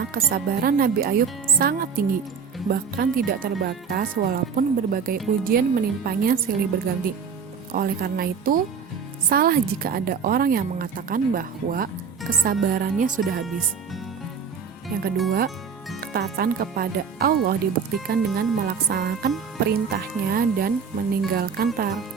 kesabaran Nabi Ayub sangat tinggi, bahkan tidak terbatas walaupun berbagai ujian menimpanya silih berganti. Oleh karena itu, salah jika ada orang yang mengatakan bahwa kesabarannya sudah habis. Yang kedua, ketaatan kepada Allah dibuktikan dengan melaksanakan perintahnya dan meninggalkan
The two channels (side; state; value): left; quieter; 6.2 dB